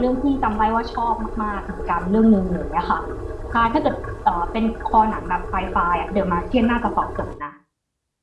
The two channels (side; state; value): both; identical; correlation 1.00